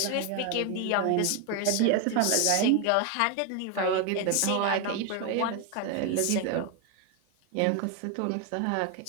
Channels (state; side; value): different; both; correlation 0.01